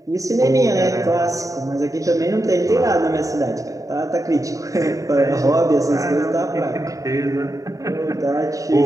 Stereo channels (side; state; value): left; late; 0.16 ms